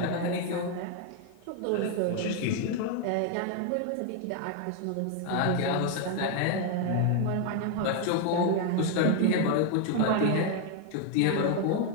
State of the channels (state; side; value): different; both; correlation 0.01